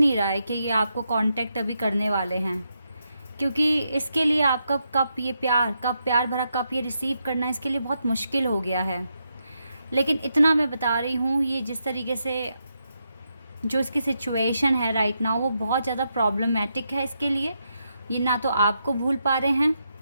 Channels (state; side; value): inverted; both; correlation -0.83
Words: रहा है कि ये आपको कांटेक्ट अभी करने वाले हैं, क्योंकि इसके लिए आपका प्यार भरा कप ये रिसीव करना इसके लिए बहुत मुश्किल हो गया है। लेकिन इतना मैं बता रही हूँ, ये जिस तरीके से जो इसकी सिचुएशन है राइट नाउ, वो बहुत ज़्यादा प्रॉब्लमेटिक है इसके लिए। ये ना तो आपको भूल पा रहे हैं